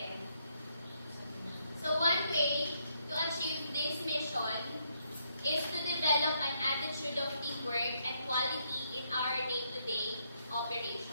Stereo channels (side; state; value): both; inverted; correlation -0.76